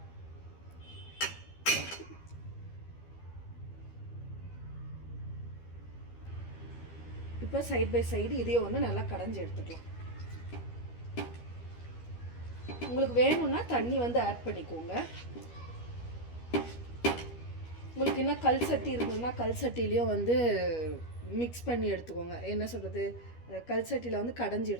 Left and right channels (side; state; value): right; late; 12 ms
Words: இப்போ சைட் பை சைடு இதையே வந்து நல்லா கடைஞ்சி எடுத்துக்கலாம். உங்களுக்கு வேணும்னா தண்ணி வந்து ஆட் பண்ணிக்கோங்க. உங்களுக்கு என்ன கல் சட்டி இருந்ததுன்னா கல் சட்டிலையும் வந்து மிக்ஸ் பண்ணி எடுத்துக்கோங்க. என்ன சொல்கிறது, கல் சட்டியில் வந்து கடைஞ்சி